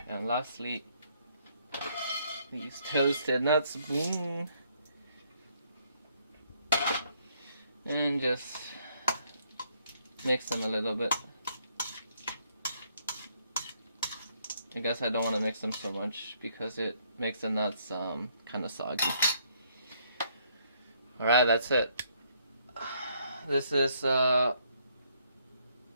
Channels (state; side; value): inverted; both; correlation -0.69